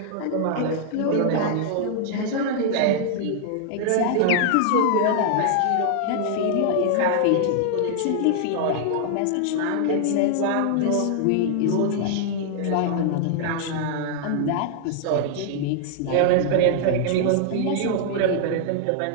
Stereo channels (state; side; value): different; both; correlation -0.01